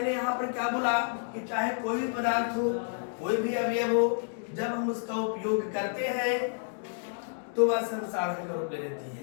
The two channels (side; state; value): right; silent; digital silence